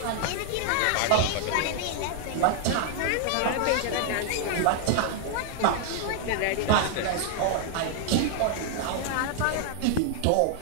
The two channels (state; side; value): different; both; correlation 0.00